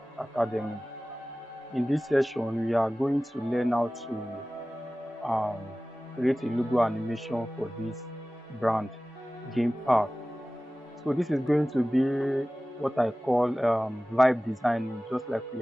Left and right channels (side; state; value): both; normal; correlation 0.97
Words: Academy. In this session, we are going to learn how to create a logo animation for this brand, Game Park. So this is going to be what I call vibe designing, just like we